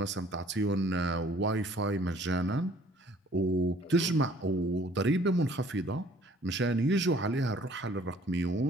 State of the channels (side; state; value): both; normal; correlation 0.56